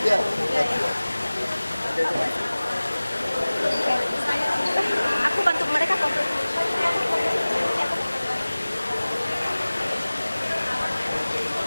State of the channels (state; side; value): inverted; both; correlation -0.99